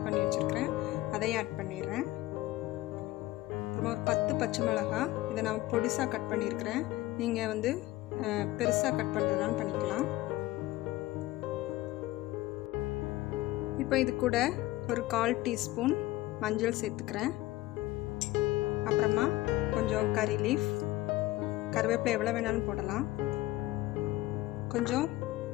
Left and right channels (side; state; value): right; quieter; 17.8 dB